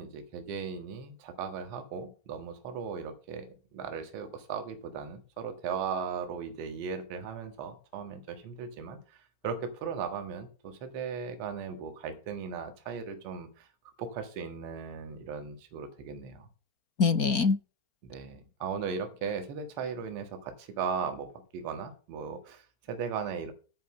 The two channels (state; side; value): late; right; 4.3 ms